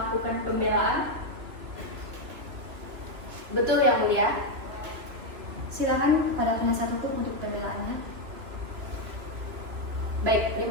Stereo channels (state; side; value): late; left; 3.0 ms